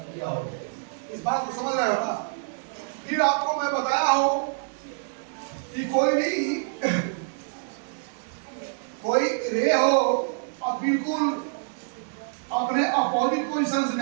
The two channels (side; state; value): left; silent; digital silence